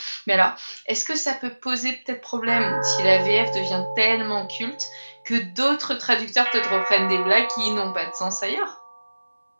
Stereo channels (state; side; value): inverted; both; correlation -1.00